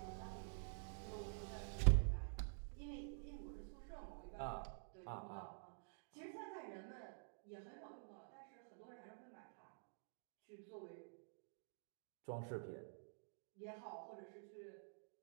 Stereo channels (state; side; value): silent; left; digital silence